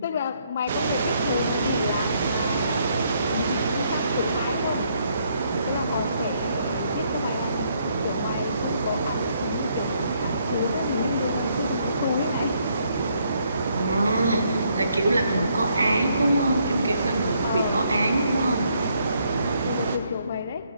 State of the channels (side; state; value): both; inverted; correlation -0.71